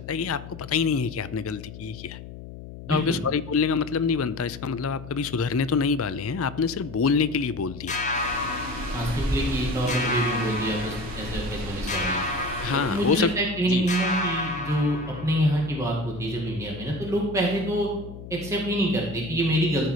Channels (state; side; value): noise; left; hum, 13 dB below the sound